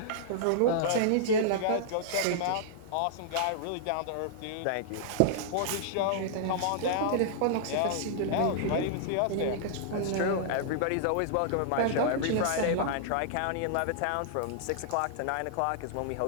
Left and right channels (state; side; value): different; both; correlation -0.01